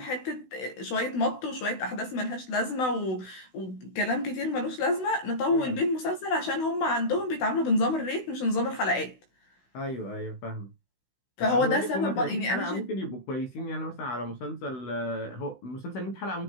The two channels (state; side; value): late; right; 16 ms